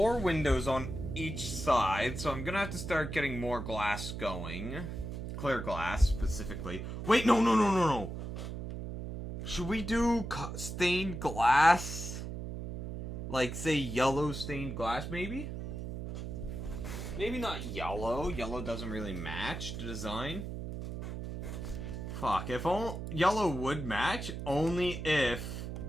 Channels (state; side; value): noise; right; hum, 6 dB below the sound